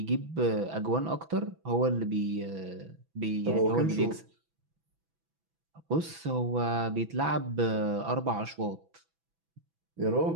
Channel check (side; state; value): left; late; 6.1 ms